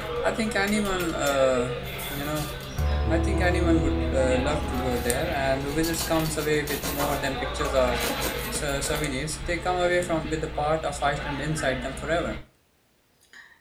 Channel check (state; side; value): identical; both; correlation 1.00